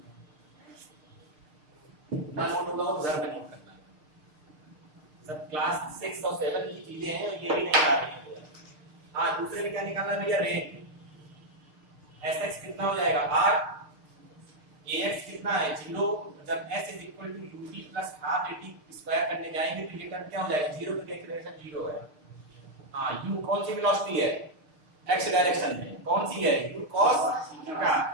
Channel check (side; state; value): left; late; 6.6 ms